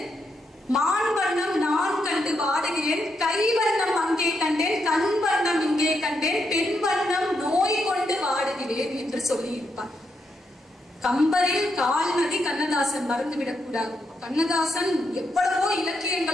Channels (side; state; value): both; normal; correlation 0.81